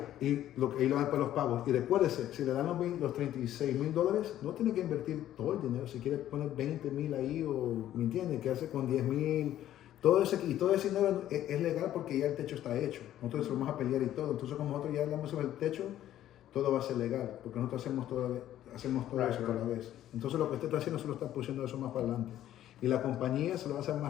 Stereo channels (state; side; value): quieter; right; 12.4 dB